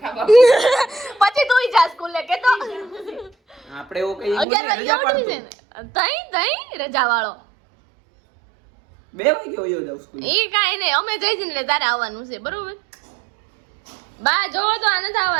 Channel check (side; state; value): left; drops out; at 4.5 s